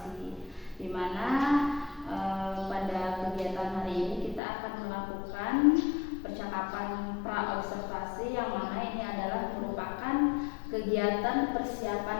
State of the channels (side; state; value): right; drops out; at 4.4 s